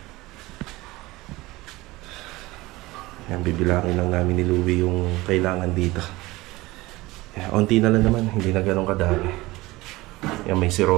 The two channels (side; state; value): left; quieter; 20.1 dB